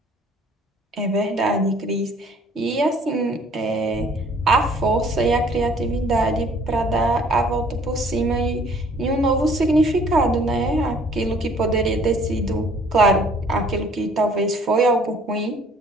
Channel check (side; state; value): both; normal; correlation 0.57